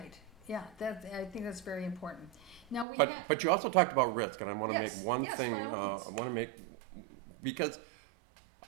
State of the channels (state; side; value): drops out; left; at 2.9 s